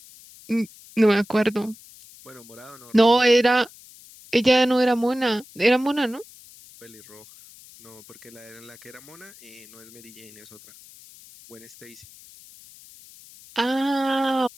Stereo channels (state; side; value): noise; left; hiss, 22 dB below the sound